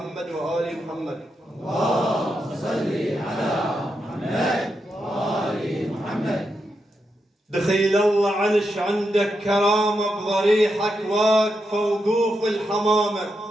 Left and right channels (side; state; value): both; normal; correlation 0.85